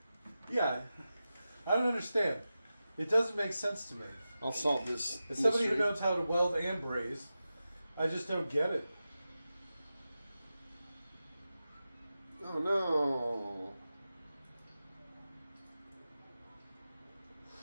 Yeah. I don't understand. It doesn't make sense to me. I'll solve this. As somebody who mystery. knows how to weld and braze, I just don't get it. Oh no.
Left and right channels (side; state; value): both; inverted; correlation -0.93